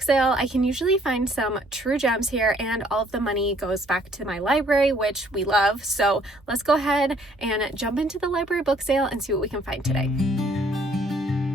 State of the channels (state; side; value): normal; both; correlation 0.62